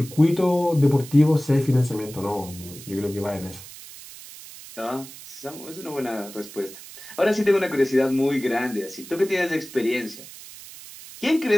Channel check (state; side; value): noise; right; hiss, 16 dB below the sound